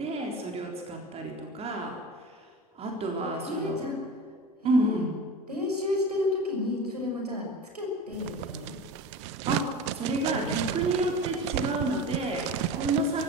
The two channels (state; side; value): normal; both; correlation 0.32